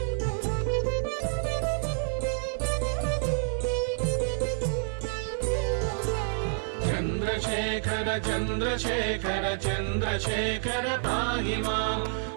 चन्द्रशेखर चन्द्रशेखर चन्द्रशेखर पाहि मां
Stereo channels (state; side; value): silent; left; 59 dB below the other